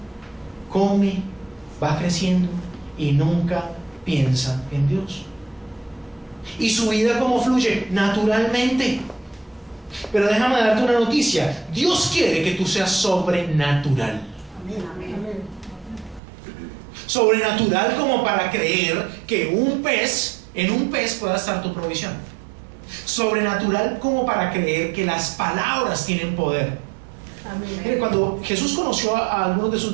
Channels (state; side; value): drops out; left; at 16.2 s